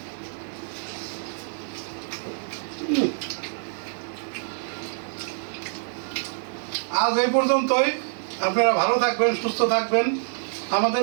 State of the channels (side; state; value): left; silent; 61 dB below the other